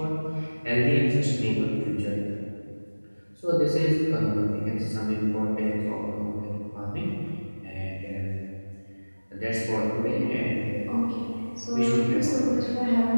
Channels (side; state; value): both; inverted; correlation -1.00